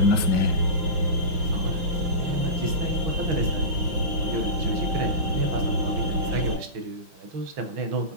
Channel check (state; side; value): late; left; 5.9 ms